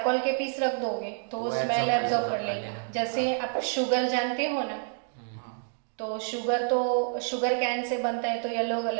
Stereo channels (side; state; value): left; silent; 58 dB below the other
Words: के पीस रख दोगे तो वो स्मेल एब्जॉर्ब कर लेगा। जैसे आप शुगर जानते हो ना, तो शुगर कैन से बनता है तो येलो